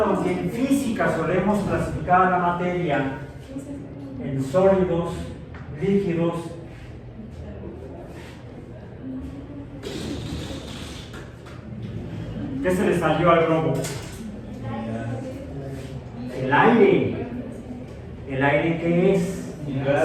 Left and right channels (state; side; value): identical; both; correlation 1.00